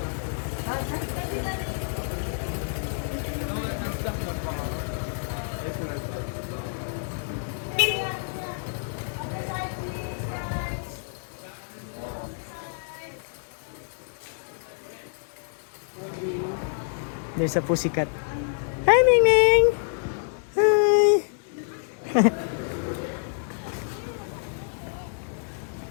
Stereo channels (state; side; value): silent; right; digital silence